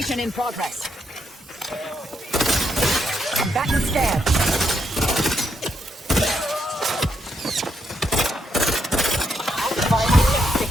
in progress. Combatant scan.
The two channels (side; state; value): both; normal; correlation 0.78